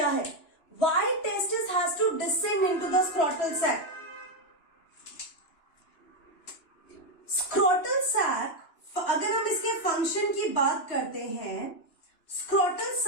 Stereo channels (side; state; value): right; late; 2.9 ms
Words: है? Why testis has to descend into the scrotal sac? Scrotal sac, अगर हम इसके फंक्शन की बात करते हैं, scrotal